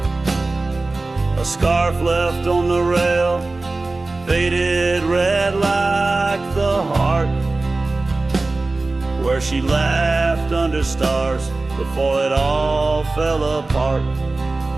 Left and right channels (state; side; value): quieter; left; 3.3 dB